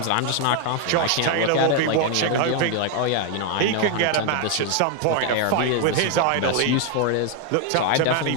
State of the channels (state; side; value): different; both; correlation 0.00